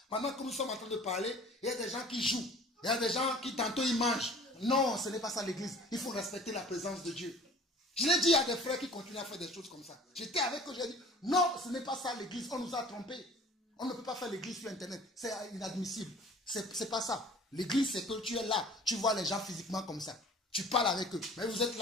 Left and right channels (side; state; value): both; normal; correlation 0.47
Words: Pendant que nous sommes en train de parler, il y a des gens qui jouent. Il y a des gens qui tantôt ils mangent. Non, ce n'est pas ça l'église. Il faut respecter la présence de Dieu. Je l'ai dit à des frères qui continuent à faire des choses comme ça. J'étais avec eux, j'ai dit, non, ce n'est pas ça l'église. On nous a trompés. On ne peut pas faire l'église sur Internet. C'est inadmissible. C'est pas ça. L'église, c'est que tu es là. Tu vois les gens physiquement comme ça. Tu parles avec eux. Mais vous êtes